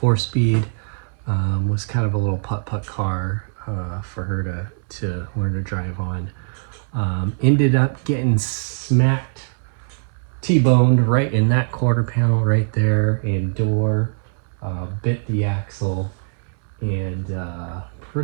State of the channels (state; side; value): silent; left; 63 dB below the other